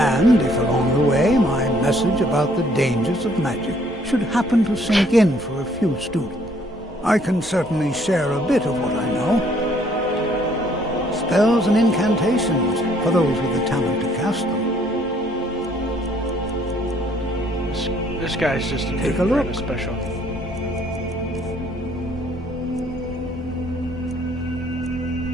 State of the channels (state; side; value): normal; both; correlation 0.63